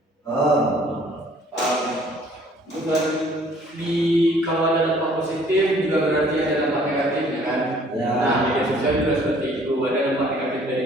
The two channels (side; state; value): both; normal; correlation 0.57